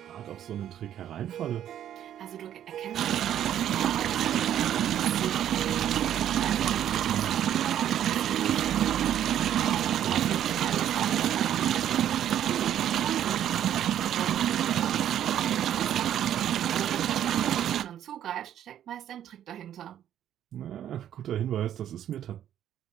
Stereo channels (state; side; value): quieter; left; 10.7 dB